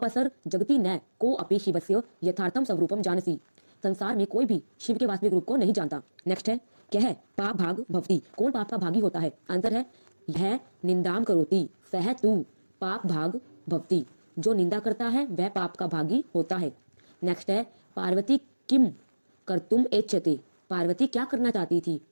जगती न को अपि शिवस्य यथार्थम स्वरूपम जानसी, संसार में कोई भी शिव के वास्तविक रूप को नहीं जानता। नेक्स्ट है क्या है पाप भाग भवती, कौन पाप का भागी होता है, आंसर है यह निंदाम करोति सह तू पाप भाग भवती, जो निंदा करता है वह पाप का भागी होता है। नेक्स्ट है पार्वती किम कर्तुम एच्छते, पार्वती क्या करना चाहती थी,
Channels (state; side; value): inverted; both; correlation -1.00